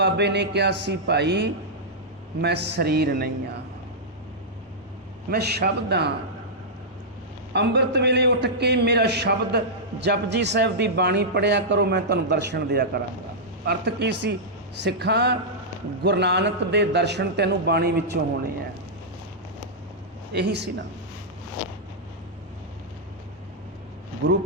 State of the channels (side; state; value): both; normal; correlation -0.10